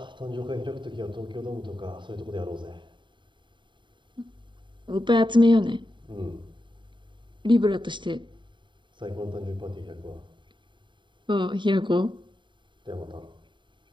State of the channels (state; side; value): late; left; 0.23 ms